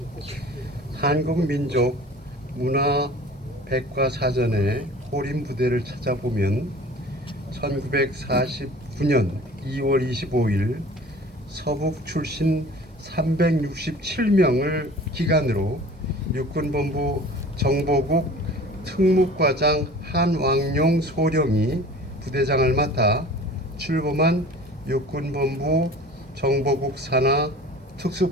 한국민족 문화백과사전의 호림 부대를 찾아보면 1949년 2월 25일 서북 출신 367명을 기간으로 육군본부 정보국 특무과장 한왕용 소령이 부대장을 맡아 출범한 육군본부 정보국 산하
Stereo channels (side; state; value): both; normal; correlation 0.43